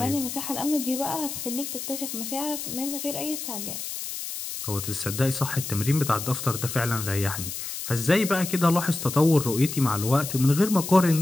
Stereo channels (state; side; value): noise; left; hiss, 7 dB below the sound